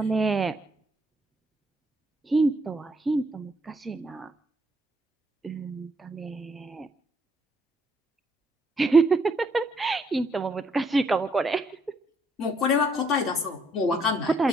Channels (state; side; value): normal; both; correlation 0.71